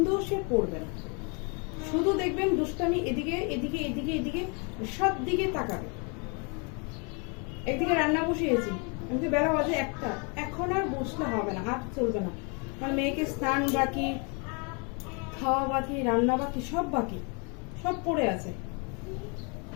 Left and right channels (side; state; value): right; quieter; 34.4 dB